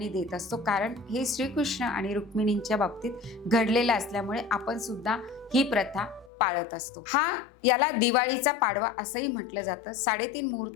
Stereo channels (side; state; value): right; drops out; at 6.3 s